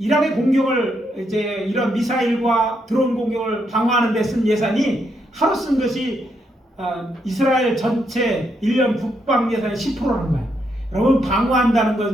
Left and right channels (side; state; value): both; normal; correlation 0.78